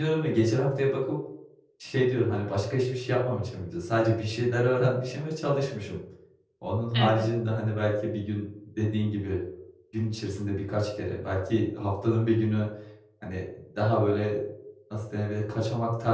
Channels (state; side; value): identical; both; correlation 1.00